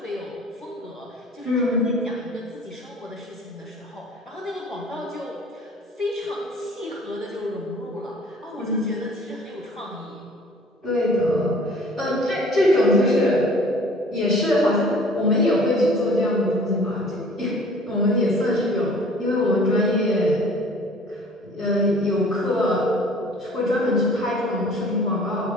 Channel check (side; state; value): both; normal; correlation 0.50